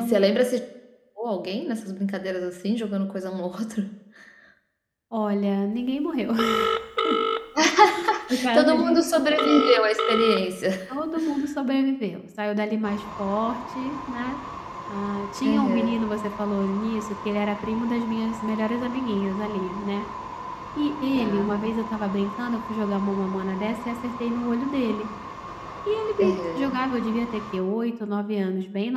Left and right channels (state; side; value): identical; both; correlation 1.00